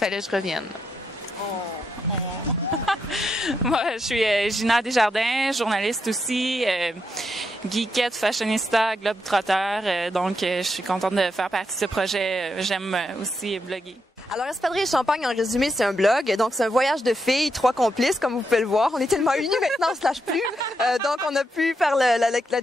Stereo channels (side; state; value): both; normal; correlation 0.82